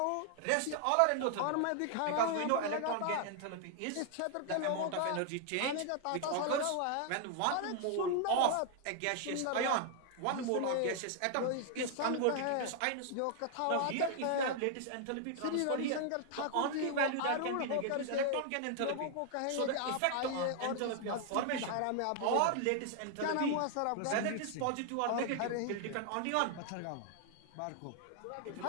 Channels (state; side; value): different; both; correlation 0.00